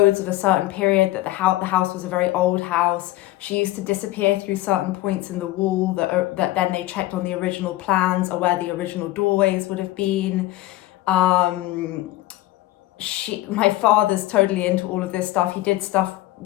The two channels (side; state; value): right; quieter; 16.6 dB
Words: of a certain period, that the house was a very old house. She used to disappear through certain points in the wall that then they checked on the original plans, or where the original doorways would have been. My father's totally into all of this stuff. He did stuff